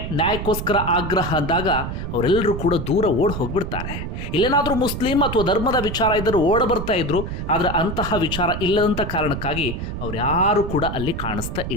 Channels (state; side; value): noise; right; rumble, 5 dB below the sound